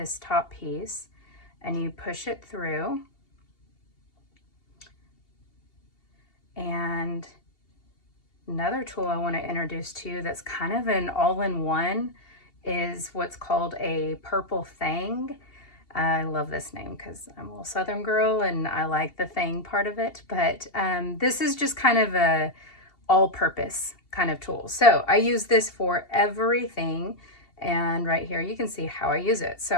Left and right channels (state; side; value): late; right; 2.7 ms